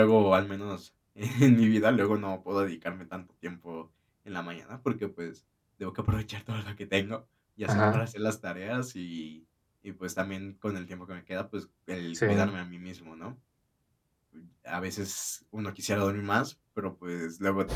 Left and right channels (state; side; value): identical; both; correlation 1.00